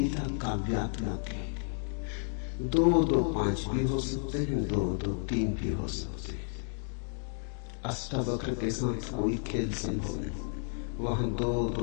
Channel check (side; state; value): right; silent; 56 dB below the other